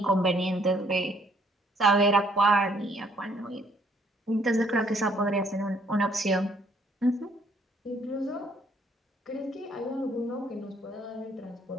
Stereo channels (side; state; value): both; normal; correlation 0.64